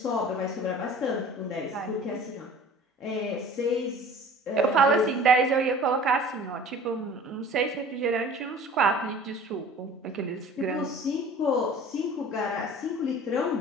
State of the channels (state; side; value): normal; both; correlation 0.45